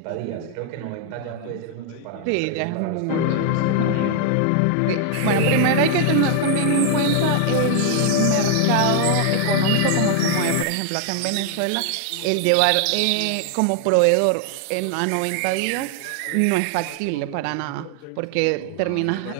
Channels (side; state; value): both; different; correlation 0.00